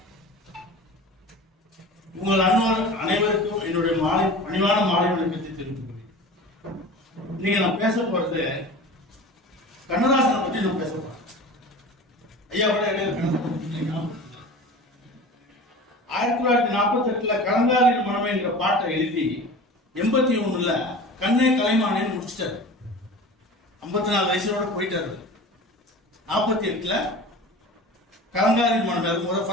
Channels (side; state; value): both; normal; correlation 0.36